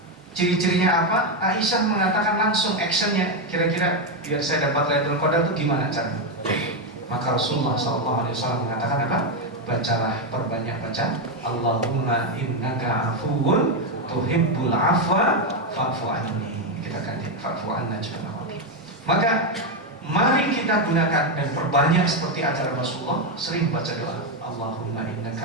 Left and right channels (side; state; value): both; normal; correlation 0.06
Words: ciri-cirinya apa, Aisyah mengatakan langsung actionnya. Kira-kira biar saya dapat Lailatul Qadar itu gimana caranya? Maka Rasulullah SAW mengatakan apa? Bacalah, perbanyak baca Allahumma innaka afuwun tuhibbul afwa fa'fu anni. Kita ganti fa'fu anna juga. Maka mari kita gunakan dan perbanyak seperti ajaran Rasulullah, sering baca doa Allahumma